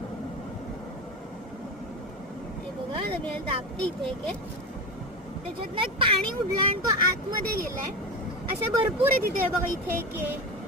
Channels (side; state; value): both; normal; correlation 0.22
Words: हे बघा मी दाबते इथे एक, त्याच्यातनं एक पाणी उडलं आणि तो आतमध्ये गेलाय. असे भरपूर आहे तिथे बघा. इथे एक आहे,